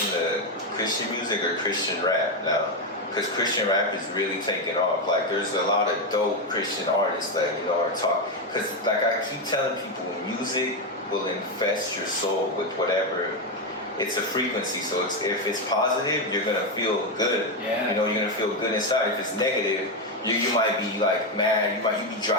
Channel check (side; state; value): both; normal; correlation 0.08